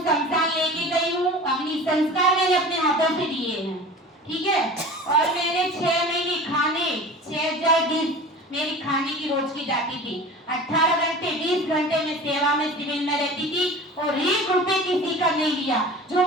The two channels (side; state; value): both; normal; correlation 0.38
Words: लेके गई हूँ। अग्नि संस्कार मैंने अपने हाथों से दिए हैं, ठीक है। और मैंने 6 महीने खाने 6000 डिश मेरी खाने की रोज की जाती थी। 18 घंटे 20 घंटे में सेवा में सिविल में रहती थी और 1 रुपए किसी का नहीं लिया। जो